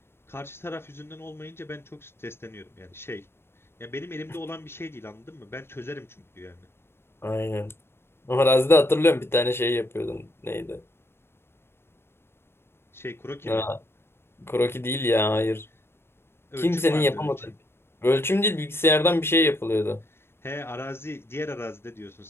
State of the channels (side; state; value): right; late; 0.12 ms